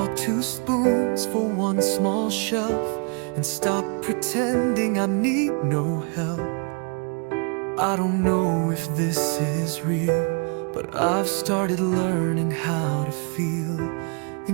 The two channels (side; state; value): left; quieter; 36.2 dB